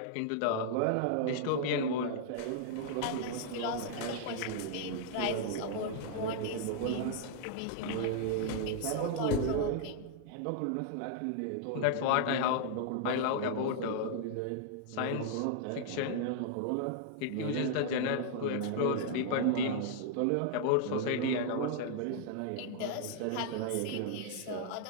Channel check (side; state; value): both; different; correlation 0.00